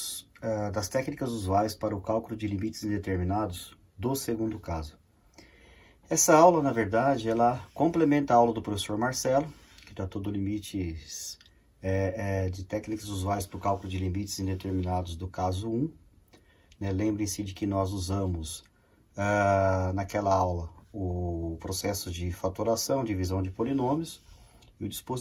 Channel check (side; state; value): both; identical; correlation 1.00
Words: das técnicas usuais para o cálculo de limites indeterminados do segundo caso. Essa aula, na verdade, ela complementa a aula do professor Marcelo, que tratou do limites de técnicas usuais para o cálculo de limites indeterminados do caso 1. Lembrem-se de que nós usamos naquela aula o processo de fatoração, divisão de polinômios e o